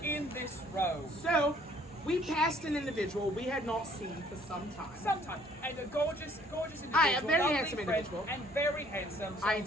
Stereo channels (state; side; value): normal; both; correlation 0.60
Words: in this row. So we passed an individual we had not seen for some time. Sometimes. And a gorgeous individual. Aye, a very lovely handsome friend, individual. And very handsome. So